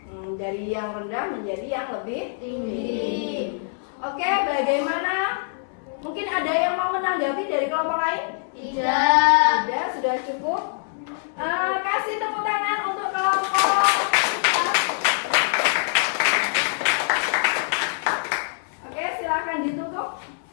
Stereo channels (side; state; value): right; silent; 63 dB below the other